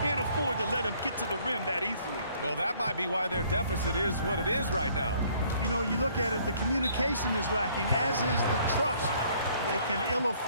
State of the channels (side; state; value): both; inverted; correlation -0.61